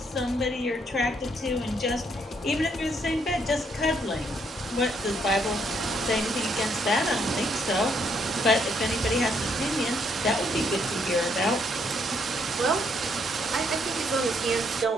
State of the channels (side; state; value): both; normal; correlation 0.71